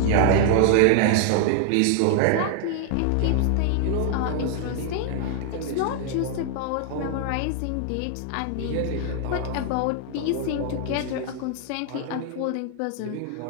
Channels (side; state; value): both; different; correlation 0.00